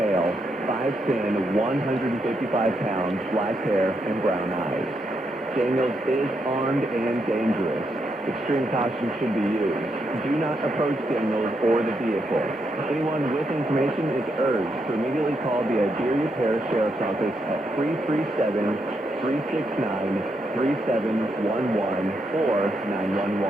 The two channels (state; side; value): normal; both; correlation 0.80